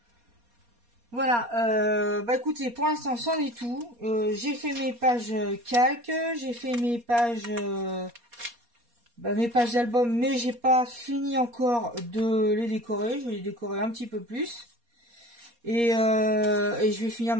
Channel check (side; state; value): left; late; 4.2 ms